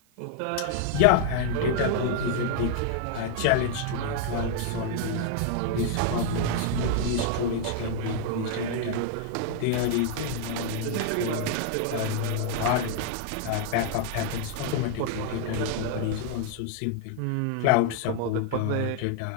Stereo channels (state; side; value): different; both; correlation 0.00